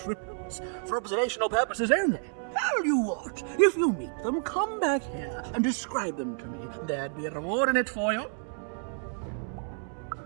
for observational purposes only. Tell you what, if you meet them, come back here and describe them to me. There'd be a reward in it for you.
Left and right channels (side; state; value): left; silent; 58 dB below the other